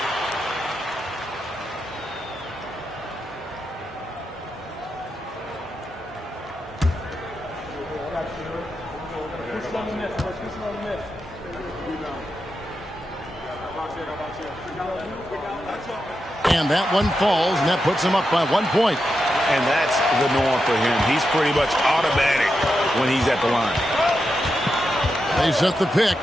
And that one falls, and that puts him up by 1 point. And that's the norm for him. He's pretty much automatic when he's at the line. They set the pick.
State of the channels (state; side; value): normal; both; correlation 0.87